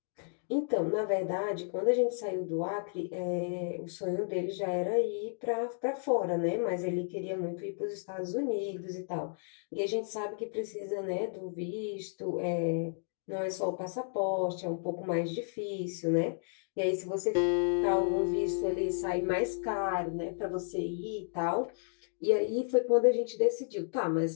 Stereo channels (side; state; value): right; silent; digital silence